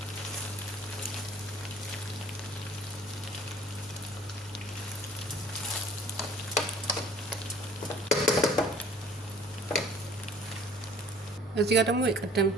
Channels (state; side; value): normal; both; correlation 0.52